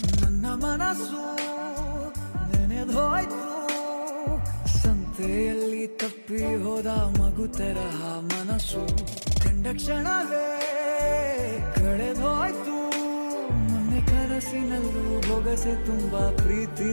ನನ್ನ ಮನಸ್ಸು ನೆನೆದೋಯ್ತು. ಸಂತೆಯಲ್ಲಿ ತಪ್ಪಿ ಹೋದ ಮಗು ತರಹ ಮನಸ್ಸು ಕಂಡ ಕ್ಷಣವೇ ಕಳೆದೋಯ್ತು. ಮೊನ್ನೆ ಕನಸಿನಲ್ಲೂ ಬೊಗಸೆ ತುಂಬಾ ಪ್ರೀತಿ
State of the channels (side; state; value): both; inverted; correlation -1.00